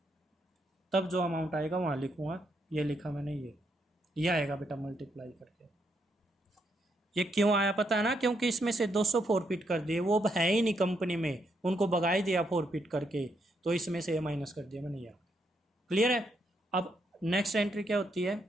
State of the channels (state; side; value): normal; both; correlation 0.77